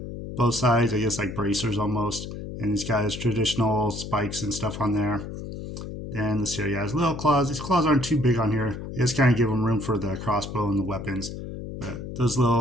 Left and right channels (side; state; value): left; noise; hum, 8 dB below the sound